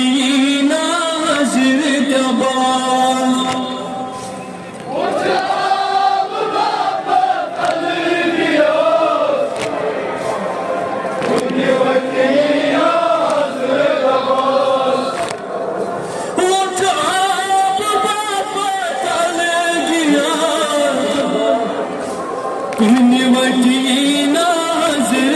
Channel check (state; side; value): identical; both; correlation 1.00